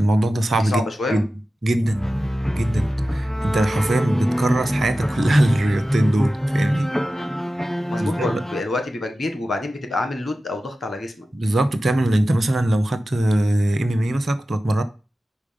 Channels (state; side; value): normal; both; correlation 0.94